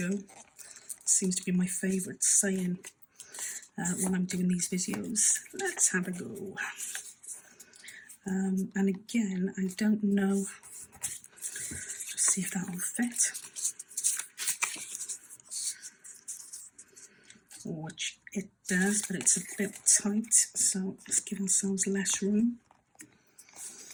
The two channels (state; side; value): identical; both; correlation 1.00